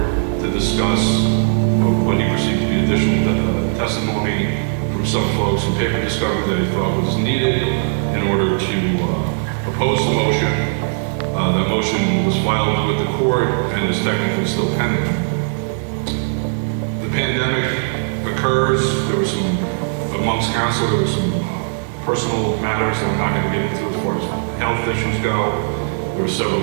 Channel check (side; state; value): left; silent; digital silence